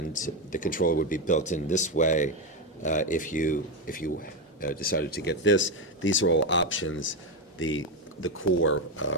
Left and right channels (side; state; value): both; normal; correlation 0.10